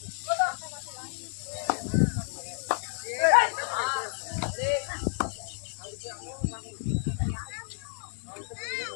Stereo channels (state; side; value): silent; right; digital silence